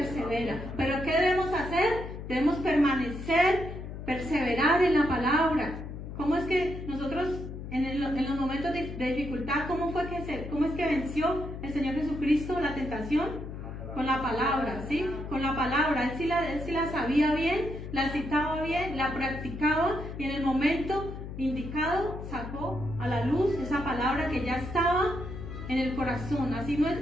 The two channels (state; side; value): noise; left; hum, 9 dB below the sound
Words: Pero ¿qué debemos hacer? Debemos perseverar en la palabra. ¿Cómo es que nosotros en los momentos de dificultad, cómo es que venció el Señor Jesucristo la tentación? Con la palabra, ¿sí? Con la palabra. Él sí la sabía bien, la citaba bien, la practicaba y en el momento indicado sacó a la luz esa palabra que ya estaba en el corazón. Así